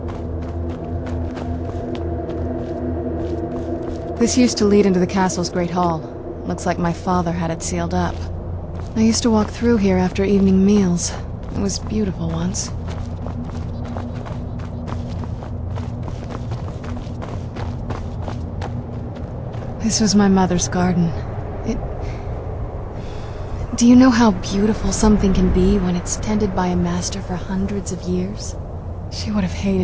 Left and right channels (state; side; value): identical; both; correlation 1.00